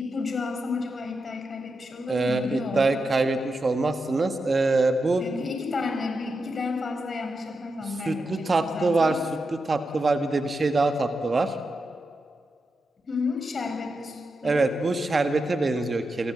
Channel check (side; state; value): both; normal; correlation 0.87